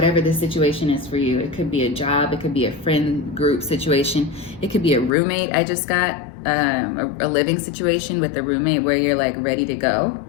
the situation is for you. It could be a job. It could be a friend group situation. It could be a roommate. I just got a living situation with a roommate where you're like ready to go.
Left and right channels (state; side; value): drops out; right; at 5.1 s